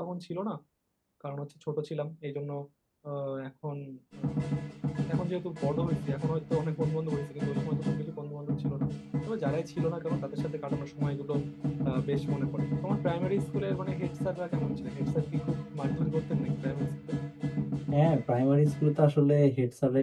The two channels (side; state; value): both; identical; correlation 1.00